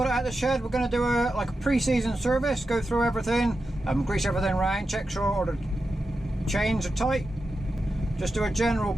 it out of the shed. We're going to do a pre-season service, go through everything, grease everything around, check sure all the chains are tight. Just do a general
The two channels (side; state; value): both; normal; correlation 0.90